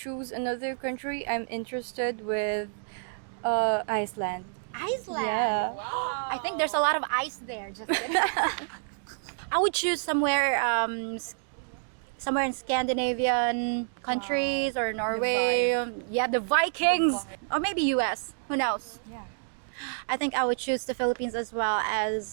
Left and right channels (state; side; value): silent; left; digital silence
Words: another country, I'm interested with Iceland. Iceland. Yeah. Wow. I think there's a lot of ice there. Just kidding. I would choose somewhere, somewhere in Scandinavian countries or Norway. Yeah, the Vikings, or maybe U.S. Who knows? I think I would choose the Philippines as well